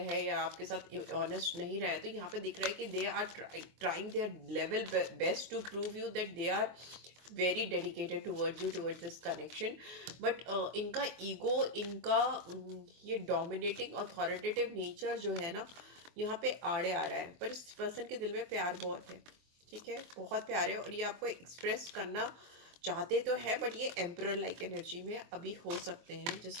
हैं या आपके साथ ऑनेस्ट नहीं रहे, तो यहाँ पे दिख रहा है कि they are trying their level best to prove you that they are very dedicated towards you, towards this connection. But इनका ईगो, इनका ये डोमिनेटिंग अथॉरिटेटिव नेचर जो है ना, यहाँ पे आड़े आ रहा है। पर इस पर्सन के दिल में प्यार बहुत है, ठीक है, बहुत प्यार है, और ये आपको एक्सप्रेस करना चाहते तो है, बट ये एम्परर लाइक एनर्जी में अभी हो सकते हैं,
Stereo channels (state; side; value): late; left; 24 ms